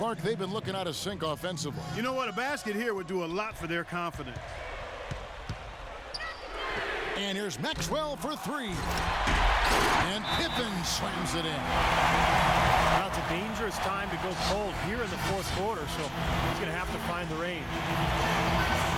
they've been looking out of sync offensively. You know what? A basket here would do a lot for their confidence. And here's Maxwell for 3. And Pippen slams it in. Now it's a dangerous time to go cold here in the 4th quarter, so he's going to have to find the range.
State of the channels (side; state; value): both; identical; correlation 1.00